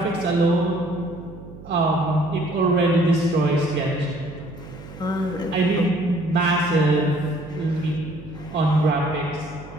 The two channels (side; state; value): right; noise; hum, 16 dB below the sound